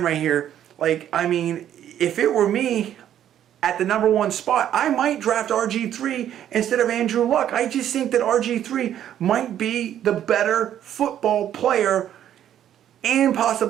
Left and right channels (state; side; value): quieter; left; 10.7 dB